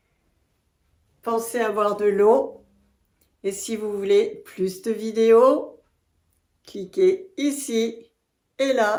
Pensez à boire de l'eau. Et si vous voulez plus de vidéos, cliquez ici et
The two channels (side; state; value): both; identical; correlation 1.00